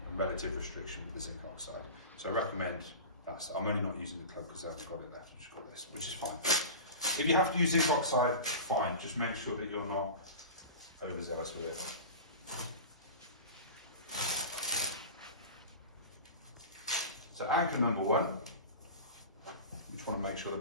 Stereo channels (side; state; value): both; inverted; correlation -0.32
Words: and relative restriction with the zinc oxide. So I recommend that. I'm only not using the club because I've got it left, I've just got this, which is fine. If you have to use zinc oxide, fine, just make sure that you're not overzealous with it. So anchor number 1, you just want to make sure